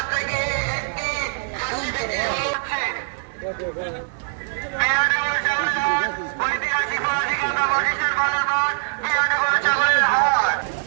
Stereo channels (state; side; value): silent; left; 64 dB below the other